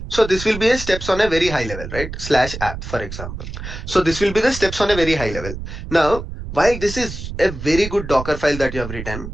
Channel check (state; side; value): noise; right; rumble, 9 dB below the sound